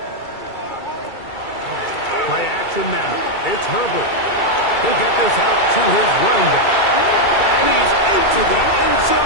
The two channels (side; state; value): right; late; 2.3 ms